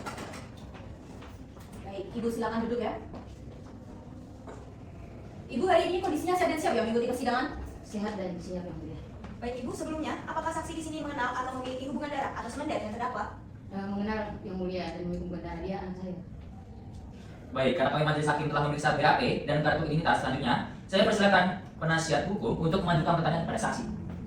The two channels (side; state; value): both; identical; correlation 1.00